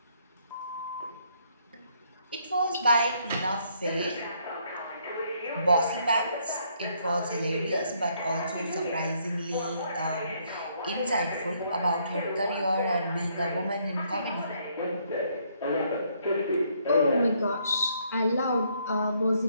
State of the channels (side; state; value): both; inverted; correlation -0.70